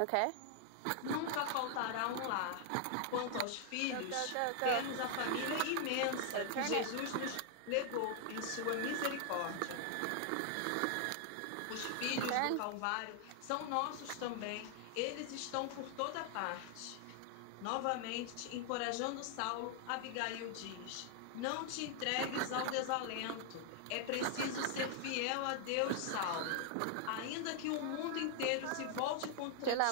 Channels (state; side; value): different; both; correlation 0.00